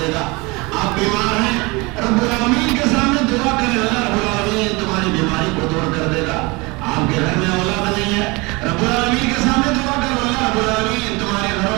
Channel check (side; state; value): left; quieter; 25.4 dB